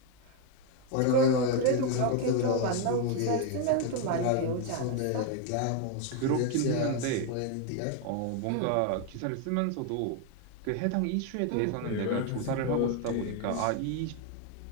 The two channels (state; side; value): different; both; correlation 0.01